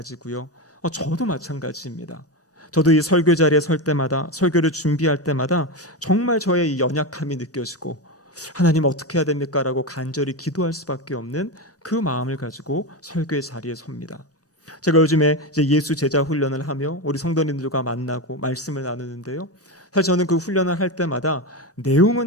저도 마찬가지입니다. 저도 이 설교 자리에 설 때마다, 설교를 준비할 때마다 정말 저의 이 연약함이 느껴지고 하나님 어떻게 해야 됩니까? 라고 간절히 기도할 수밖에 없는 그 마음을 가지고 설교의 자리에 섭니다. 제가 요즘에 이제 예수 제자 훈련을 하며 우리 성도님들과 만나고 말씀을 나누는데요, 사실 저는 그 훈련을 할 때마다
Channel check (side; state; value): both; normal; correlation 0.16